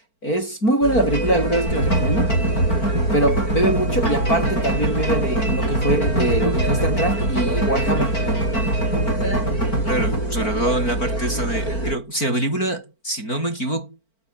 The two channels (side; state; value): right; late; 4.4 ms